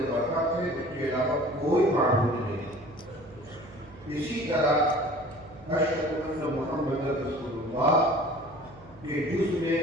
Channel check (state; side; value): noise; right; hum, 22 dB below the sound